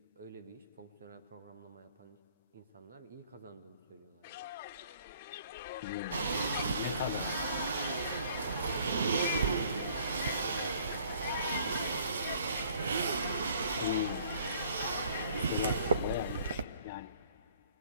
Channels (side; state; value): both; inverted; correlation -0.58